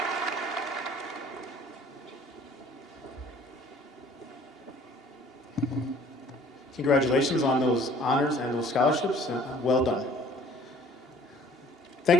Congratulations on those honors and those scholarships. Well done. Thank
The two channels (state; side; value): normal; both; correlation 0.54